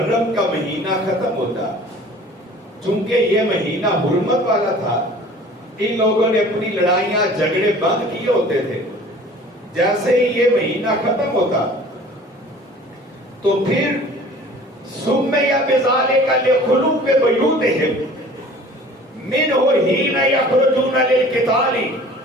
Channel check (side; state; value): both; normal; correlation 0.47